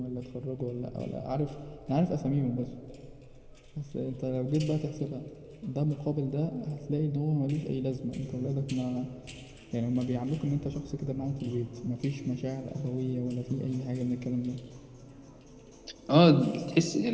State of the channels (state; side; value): identical; both; correlation 1.00